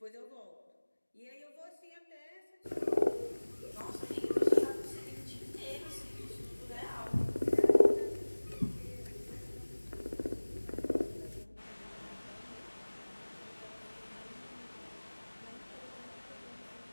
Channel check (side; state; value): both; inverted; correlation -1.00